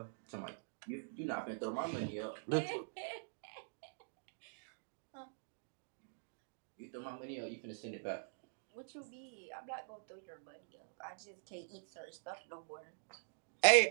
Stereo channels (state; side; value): silent; left; digital silence